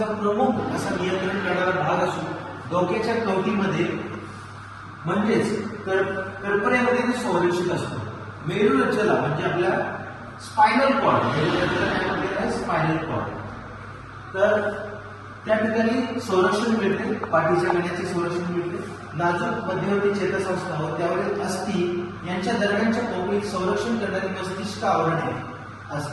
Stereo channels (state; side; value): identical; both; correlation 1.00